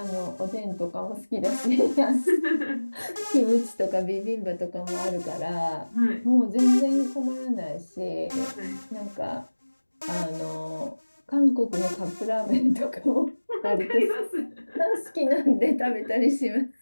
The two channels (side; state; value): both; inverted; correlation -1.00